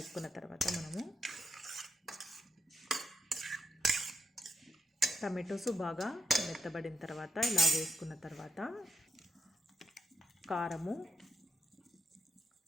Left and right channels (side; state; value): both; normal; correlation 0.82